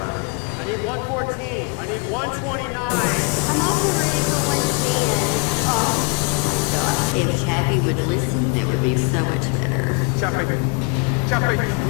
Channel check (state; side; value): quieter; right; 33.6 dB